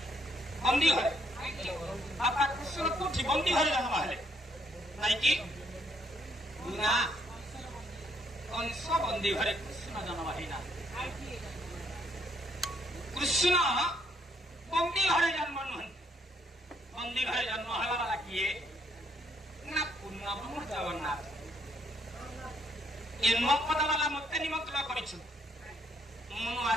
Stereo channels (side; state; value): both; normal; correlation 0.70